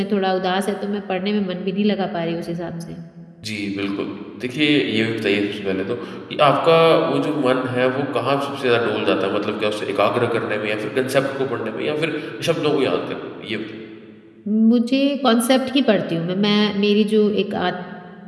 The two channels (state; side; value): identical; both; correlation 1.00